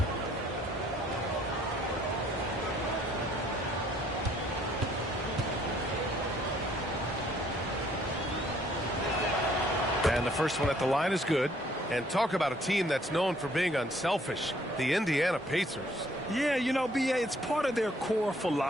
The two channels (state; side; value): normal; both; correlation 0.63